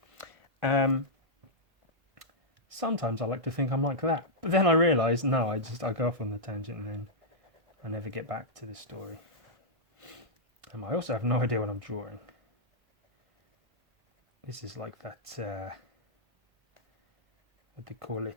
Sometimes I like to think I'm like that. But then I realise, no, I go off on the tangent and then I never get back to the story. I also have no idea what I'm drawing. This is like that, what they call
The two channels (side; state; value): left; late; 1.5 ms